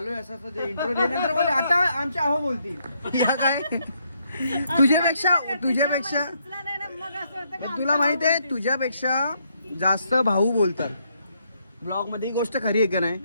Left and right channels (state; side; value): inverted; both; correlation -0.74